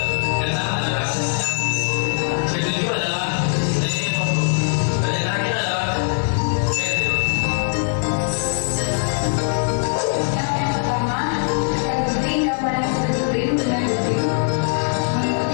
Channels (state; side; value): silent; right; 64 dB below the other